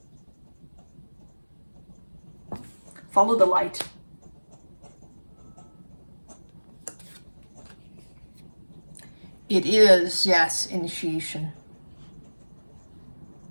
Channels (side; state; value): both; inverted; correlation -1.00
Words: Follow the light. It is, yes, initiation